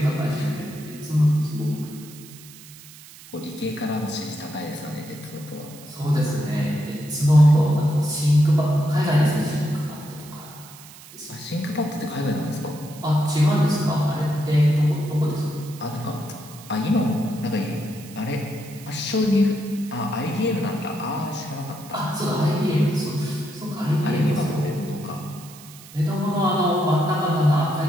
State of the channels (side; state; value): right; noise; hiss, 19 dB below the sound